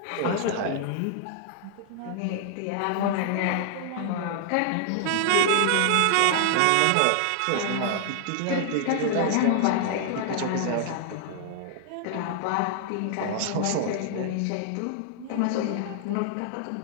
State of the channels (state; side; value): different; both; correlation 0.00